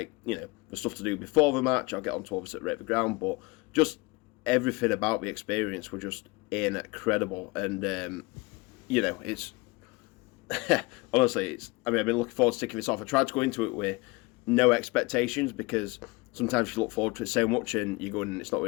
you know, the stuff to do before the match, I'll get on to obviously rate the ground, but just everything about the experience were just incredible. And you know, it's honestly, I mean, I've been looking forward to taking this off. I tried to go into it with no expectations, because sometimes you look forward to it so much and you go in and it's not what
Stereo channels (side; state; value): right; quieter; 25.2 dB